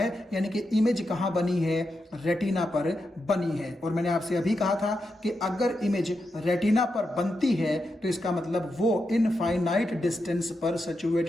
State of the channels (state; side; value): normal; both; correlation 0.86